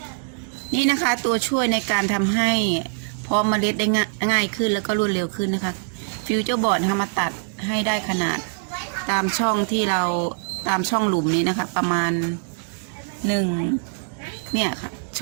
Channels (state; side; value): silent; left; 63 dB below the other